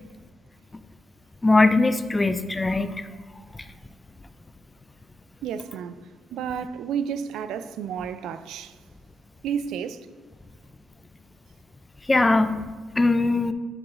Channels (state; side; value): normal; both; correlation 0.90